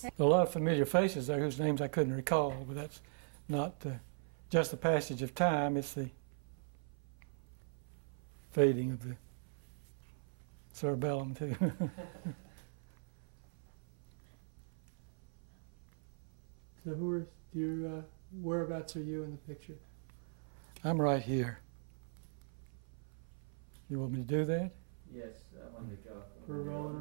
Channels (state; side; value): silent; left; 51 dB below the other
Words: say. A lot of familiar faces there whose names I couldn't recall, but that's not just the passage of time, it's the fading of the cerebellum too. So whereabouts are you in the picture? I'm right here. You want me to do that? Yes, I want to go. We're